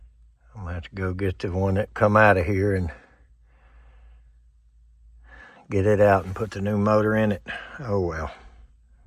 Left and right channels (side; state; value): both; identical; correlation 1.00